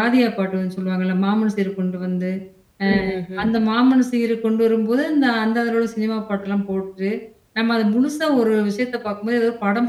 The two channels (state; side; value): identical; both; correlation 1.00